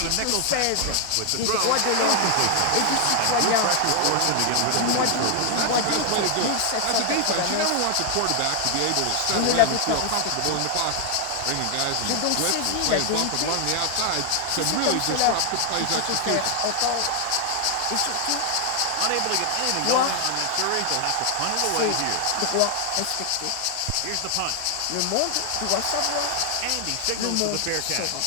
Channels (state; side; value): different; both; correlation 0.00